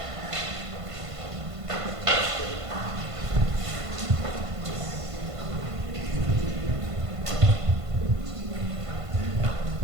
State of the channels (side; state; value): left; late; 1.5 ms